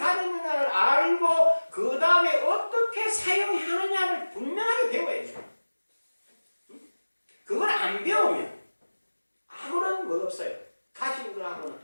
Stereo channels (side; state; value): both; inverted; correlation -1.00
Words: 알고 그 다음에 어떻게 사용하느냐를 분명하게 배워야 돼요. 그걸 안 배우면 아무런 뭐 없어요. 가진 거하고는